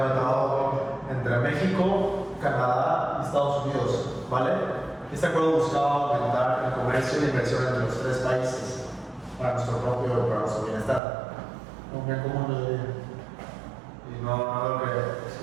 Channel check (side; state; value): left; drops out; at 11.0 s